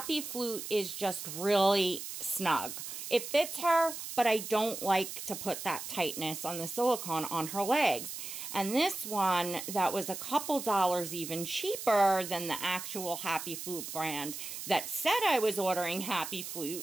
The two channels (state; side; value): noise; right; hiss, 8 dB below the sound